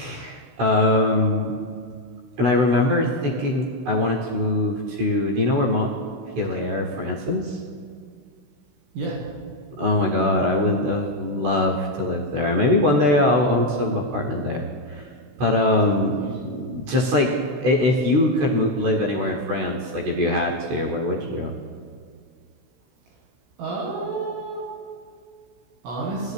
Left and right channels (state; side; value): late; left; 16 ms